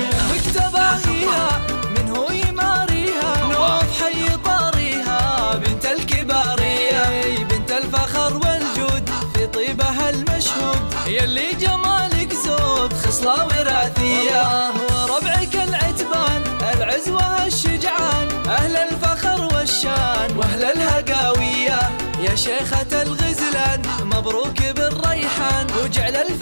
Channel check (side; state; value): both; inverted; correlation -1.00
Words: مكتباهيها من هو يماريها، نوف حي طاريها بنت الكبارية، بنت الفخر والجود في طيبها المشهود، يلي جمالك زود خصلة وراثية، وربعك العتبان العز والشجعان، أهل الفخر والشان وأهل الهقاوية، يا شيخة الغزلان مبروك بالريحان، وجعل